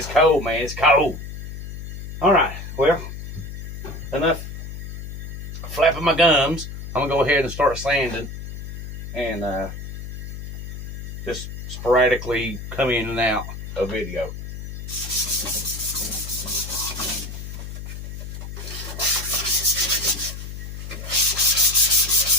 cold, man. It's cold. All right. Well, enough flapping my gums. I'm going to go ahead and start sanding, and just sporadically come in and out of video.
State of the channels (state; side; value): noise; left; hum, 8 dB below the sound